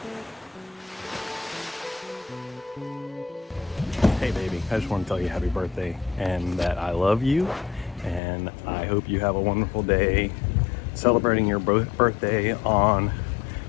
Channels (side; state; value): right; drops out; at 8.2 s